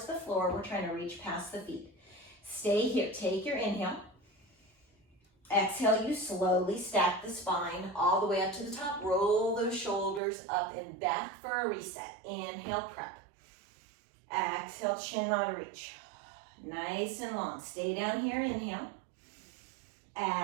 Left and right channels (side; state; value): left; drops out; at 10.2 s